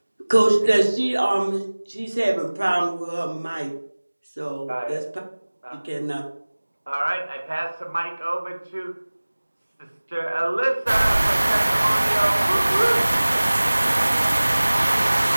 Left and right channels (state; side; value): inverted; both; correlation -1.00